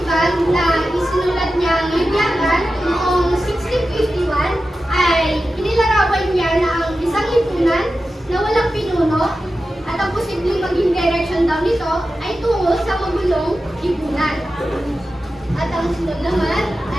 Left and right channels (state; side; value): normal; both; correlation 0.93